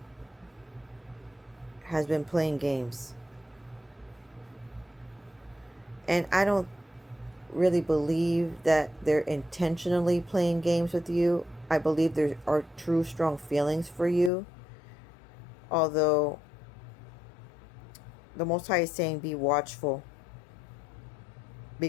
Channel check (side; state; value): right; drops out; at 14.3 s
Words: has been playing games. And I don't really believe that they're intentionally playing games with you. I believe there are true strong feelings for you. Although the Most High is saying be watchful,